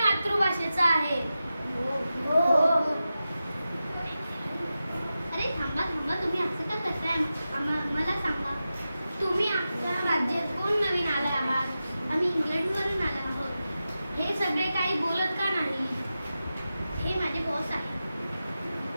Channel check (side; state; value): both; inverted; correlation -0.92